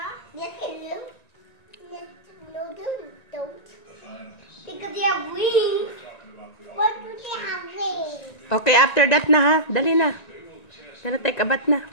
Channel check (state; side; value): late; right; 1.9 ms